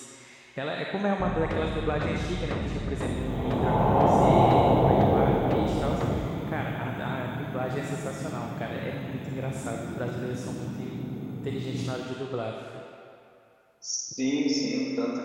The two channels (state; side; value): identical; both; correlation 1.00